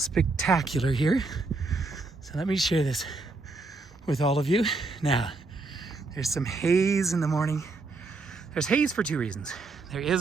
here. So let me share this with all of you. Now, there's some haze in the morning. There's haze for two reasons. There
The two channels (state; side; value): quieter; left; 3.5 dB